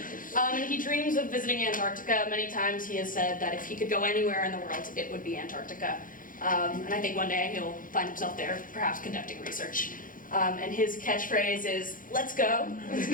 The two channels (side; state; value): right; late; 0.40 ms